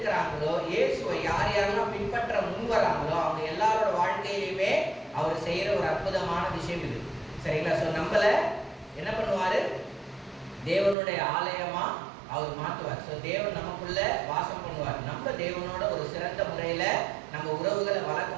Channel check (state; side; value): drops out; left; at 11.0 s